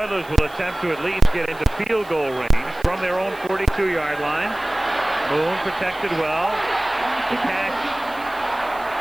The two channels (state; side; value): noise; right; hiss, 24 dB below the sound